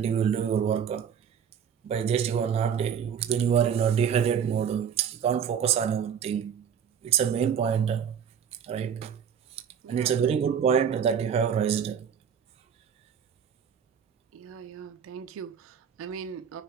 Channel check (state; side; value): quieter; left; 7.8 dB